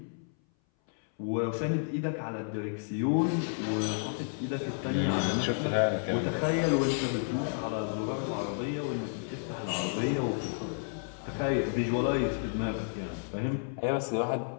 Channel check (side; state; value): right; silent; 57 dB below the other